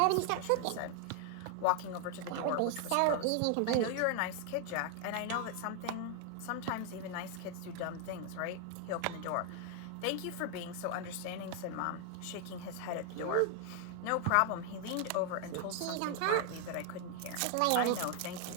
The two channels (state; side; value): different; both; correlation 0.00